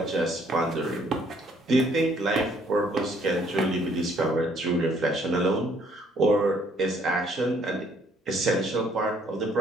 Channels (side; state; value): both; normal; correlation 0.64